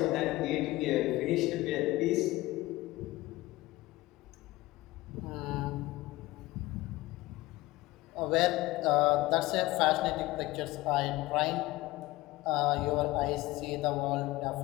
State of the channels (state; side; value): quieter; right; 19.0 dB